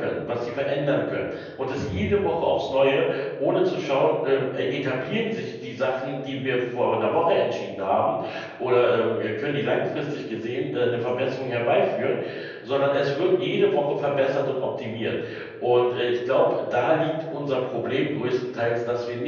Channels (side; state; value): both; identical; correlation 1.00